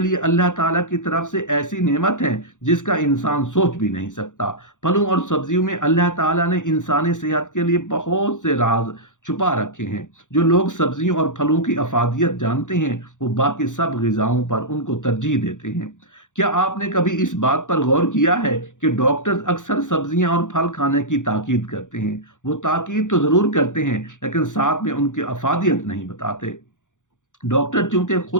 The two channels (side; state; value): right; late; 0.86 ms